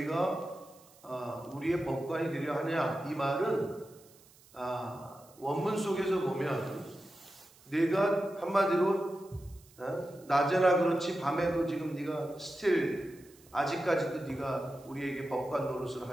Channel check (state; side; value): noise; right; hiss, 26 dB below the sound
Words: 우리의 법관이 되려 하냐, 이 말은 원문 속에서 보면 네가 한마디로 낮에나 그렇지 밤에도 지금 네가 아직까지도 네가 우리에게 법관 노릇을